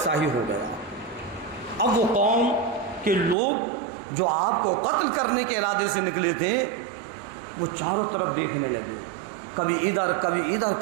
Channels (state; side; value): drops out; left; at 3.4 s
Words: ہی ہو گیا. اب وہ قوم کے لوگ جو آپ کو قتل کرنے کے ارادے سے نکلے تھے، وہ چاروں طرف دیکھنے لگے، کبھی ادھر کبھی ادھر